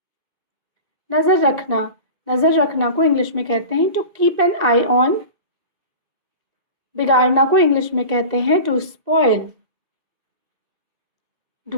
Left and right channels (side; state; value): left; late; 2.2 ms